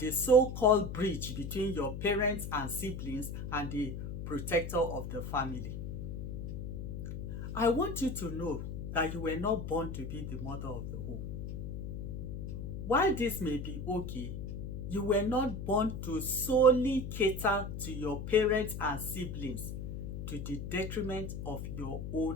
so-called bridge between your parents and siblings and the protector of the family. I want you to know that you were not born to be the mother of the home. While this may be okay, you were not born to solely cater to your parents and siblings to the detriment of your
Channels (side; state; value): left; noise; hum, 6 dB below the sound